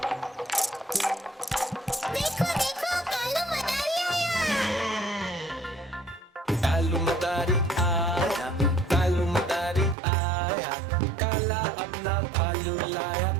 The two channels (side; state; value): left; drops out; at 10.0 s